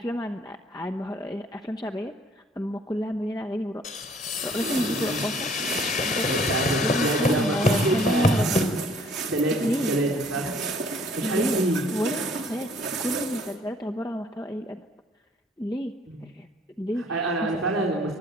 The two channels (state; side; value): normal; both; correlation 0.59